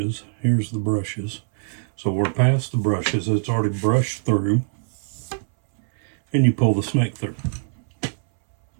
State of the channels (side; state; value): left; silent; 62 dB below the other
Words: Here's the brushes. So we're past the brushes. It's already brushed through. And you pull the snake through.